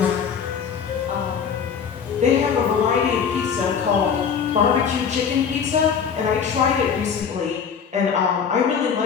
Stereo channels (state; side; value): quieter; right; 6.9 dB